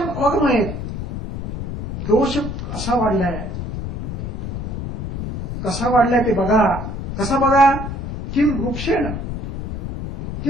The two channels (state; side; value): noise; left; rumble, 7 dB below the sound